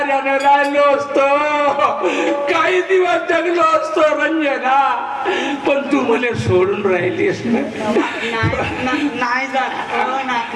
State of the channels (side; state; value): both; identical; correlation 1.00